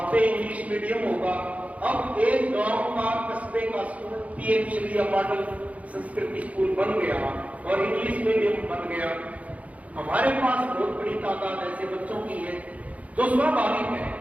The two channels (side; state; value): left; late; 0.068 ms